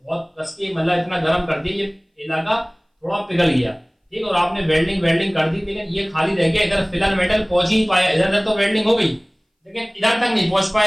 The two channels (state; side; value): identical; both; correlation 1.00